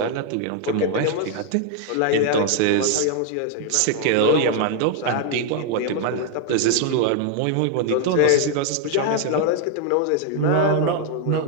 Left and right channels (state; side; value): different; both; correlation 0.00